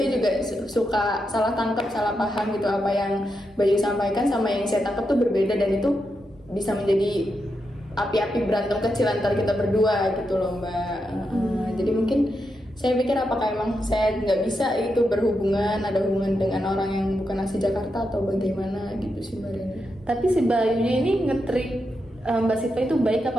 juga suka salah tangkap, salah paham gitu, apa yang Bayu sampaikan sama yang saya tangkap tuh berbeda, dan itu bisa menjadi api-api berantem kecil antara kita berdua gitu loh Mbak. Jadi mungkin saya pikir apakah emang saya nggak bisa itu berhubungan, ada hubungan dengan orang yang bukan asli Jakarta atau bagaimana gitu sih Mbak Reni. Tapi si Bayunya ini nge-treat Mbak Siva itu baik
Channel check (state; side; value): normal; both; correlation 0.85